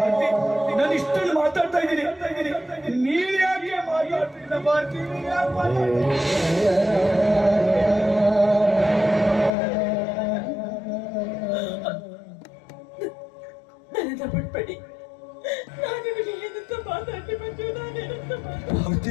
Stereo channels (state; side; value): drops out; right; at 9.5 s